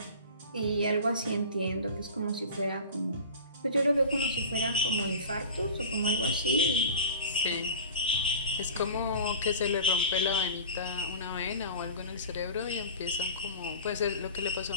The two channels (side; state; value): both; inverted; correlation -0.38